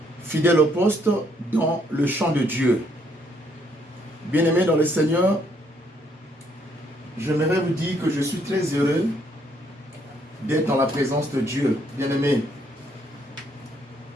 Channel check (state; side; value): normal; both; correlation 0.69